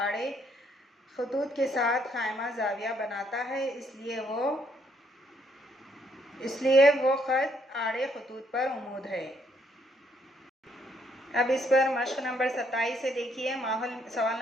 खतूत के साथ ख़ाइमा ज़ाविया बनाता है, इसलिए वो ख़त आड़े खतूत पर उमूद है। अब इस पर मश्क नंबर 27 से देखिए। सवाल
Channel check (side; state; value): both; normal; correlation 0.71